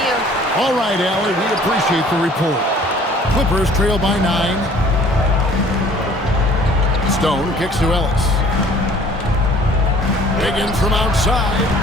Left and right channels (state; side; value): normal; both; correlation 0.53